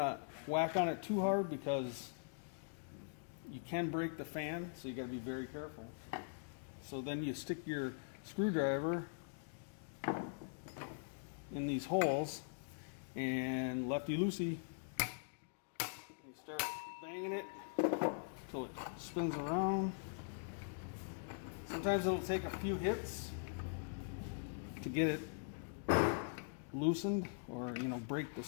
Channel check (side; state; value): right; silent; digital silence